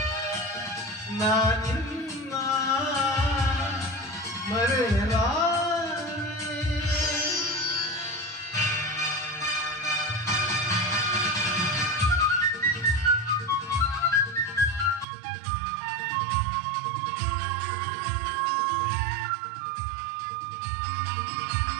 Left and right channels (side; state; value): left; drops out; at 15.1 s